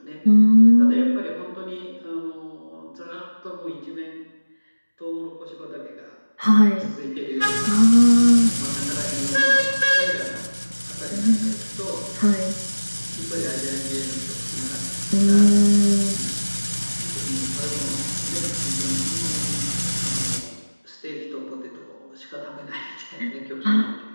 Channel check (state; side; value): inverted; both; correlation -1.00